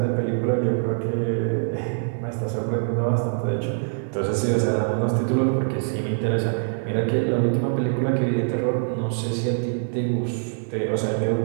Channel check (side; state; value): left; silent; digital silence